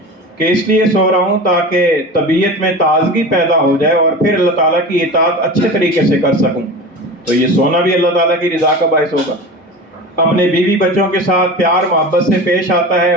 کہ اس لیے سو رہا ہوں تاکہ طبیعت میں تازگی پیدا ہو جائے اور پھر اللہ تعالیٰ کی اطاعت اچھے طریقے سے کر سکوں، تو یہ سونا بھی اللہ تعالیٰ کی رضا کا باعث ہوگا۔ اپنے بیوی بچوں کے ساتھ پیار محبت سے پیش آتا ہے،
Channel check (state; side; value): normal; both; correlation 0.31